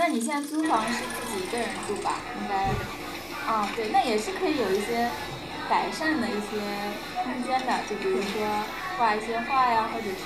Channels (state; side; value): identical; both; correlation 1.00